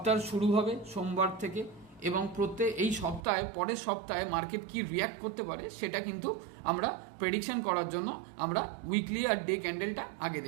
শুরু হবে সোমবার থেকে এবং এই সপ্তাহে পরের সপ্তাহে মার্কেট কি রিয়াক্ট করতে পারে সেটা কিন্তু আমরা প্রেডিকশন করার জন্য আমরা উইকলি আর ডে ক্যান্ডেলটা আগে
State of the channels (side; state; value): left; drops out; at 3.2 s